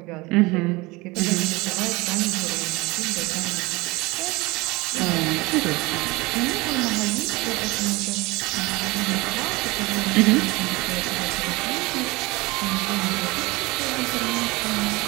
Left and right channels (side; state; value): left; quieter; 23.0 dB